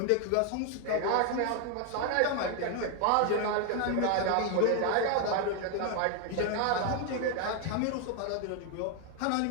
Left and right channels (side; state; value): both; different; correlation 0.01